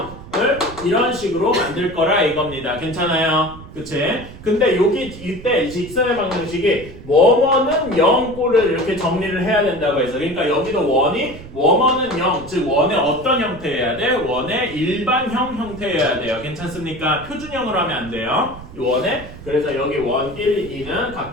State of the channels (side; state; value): right; noise; rumble, 15 dB below the sound